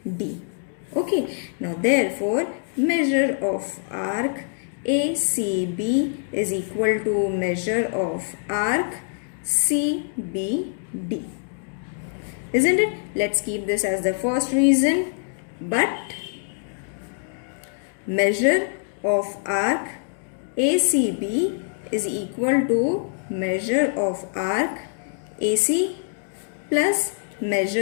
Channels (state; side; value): silent; right; digital silence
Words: Okay, now therefore measure of arc ACB is equal to measure of arc CBD. Isn't it? Let's keep this as the first reason. But measure of arc ACB is equal to measure of arc AC plus